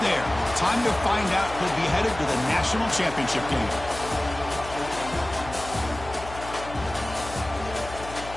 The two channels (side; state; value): left; noise; hum, 13 dB below the sound